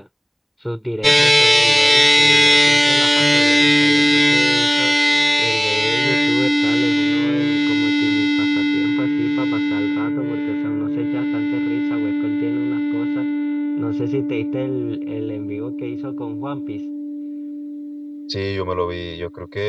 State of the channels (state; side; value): identical; both; correlation 1.00